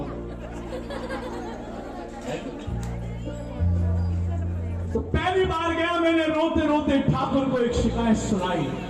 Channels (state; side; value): identical; both; correlation 1.00